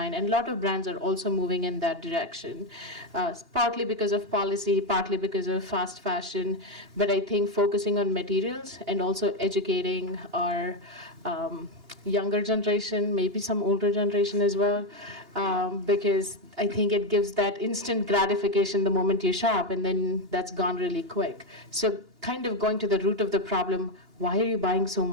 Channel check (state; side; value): late; left; 2.9 ms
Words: And a lot of brands are also moving in that direction. Partly because of policy, partly because of fast fashion, but I think focusing on materials and also educating our younger generation, maybe some older generation as well, because I think it gives that instant gratification the moment you shop, and then that's gone really quick. So kind of going to the root of the problem, why are you buying so